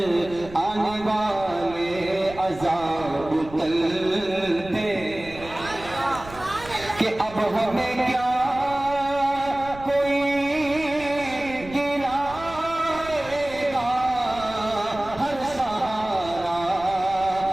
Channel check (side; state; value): right; noise; rumble, 17 dB below the sound